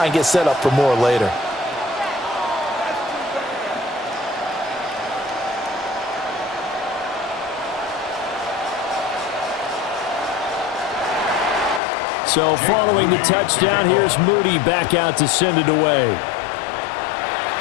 and get set up for more later. So following the touchdown, here's Moody back out to send it away.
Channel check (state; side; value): drops out; right; at 11.8 s